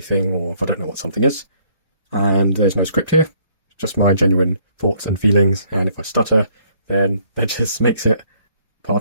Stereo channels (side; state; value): both; inverted; correlation -0.64